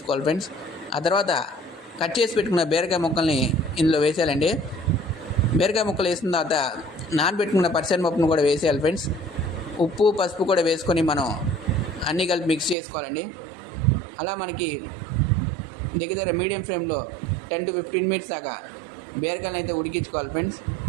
ఫ్రెండ్స్. ఆ తర్వాత కట్ చేసి పెట్టుకున్న బీరకాయ ముక్కల్ని ఇందులో వేసేయాలండి. బీరకాయ ముక్కలు వేసిన తర్వాత నానబెట్టుకున్న పచ్చిశనగపప్పును కూడా వేసేయాలి ఫ్రెండ్స్. ఉప్పు, పసుపు కూడా వేసుకొని మనం అన్నీ కలిపి మిక్స్ చేసుకోవాలండి. అలా మనకి దగ్గర మీడియం ఫ్లేమ్లో 10 to 15 మినిట్స్ దాకా బీరకాయలను అయితే ఉడికించుకోవాలి ఫ్రెండ్స్.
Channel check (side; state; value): left; drops out; at 12.8 s